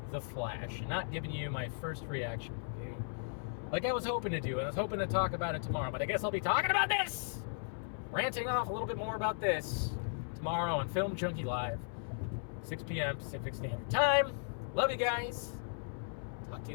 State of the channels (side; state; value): right; silent; 53 dB below the other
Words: The Flash. Not giving you my first reaction review like I was hoping to do. And I was hoping to talk about it tomorrow. But I guess I'll be talking about this. Ranting off a little bit more about this tomorrow on Film Junkie Live, 6 p.m. Pacific Standard Time. Love you guys. Talk to